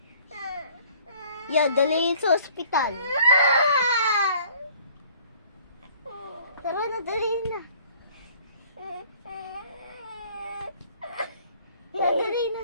Yan, dali sa ospital. Tara na, dali na. Dali na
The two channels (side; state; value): both; inverted; correlation -0.55